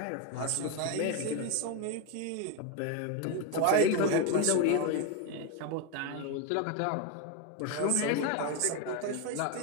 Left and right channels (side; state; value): both; different; correlation 0.02